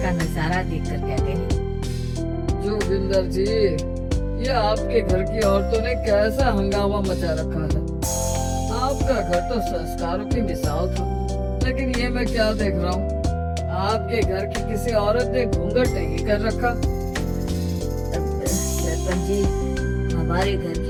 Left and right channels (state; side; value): identical; both; correlation 1.00